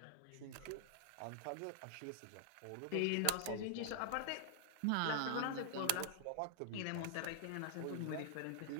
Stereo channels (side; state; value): both; different; correlation -0.01